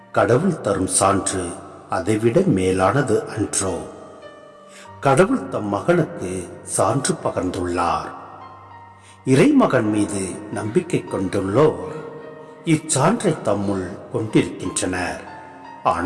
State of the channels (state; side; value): identical; both; correlation 1.00